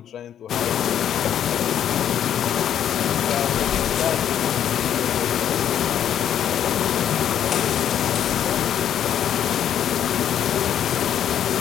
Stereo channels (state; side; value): quieter; right; 9.8 dB